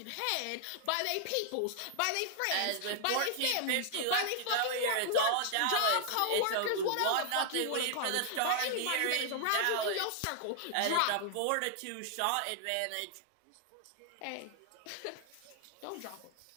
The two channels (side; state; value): both; different; correlation 0.00